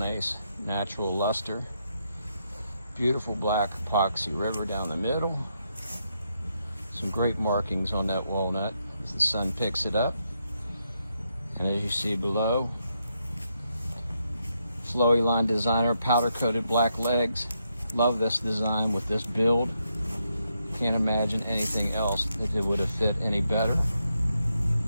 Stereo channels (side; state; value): both; inverted; correlation -0.80